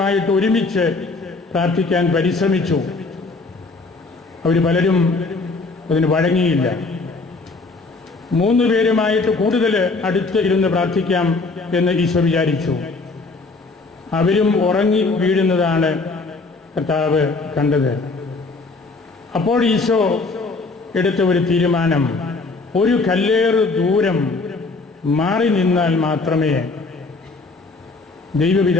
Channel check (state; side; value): quieter; right; 3.8 dB